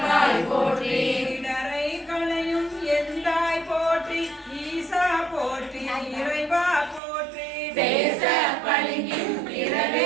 போற்றி இடரை களையும் எந்தாய் போற்றி ஈசா போற்றி இறைவா போற்றி பேச பளிங்கின்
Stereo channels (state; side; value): drops out; left; at 7.0 s